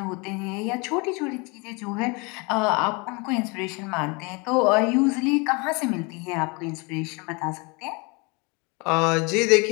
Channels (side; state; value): right; quieter; 29.1 dB